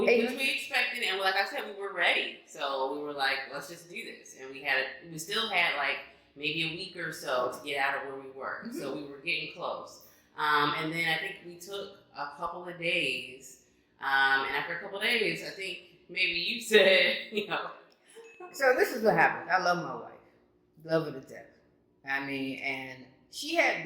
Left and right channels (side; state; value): both; identical; correlation 1.00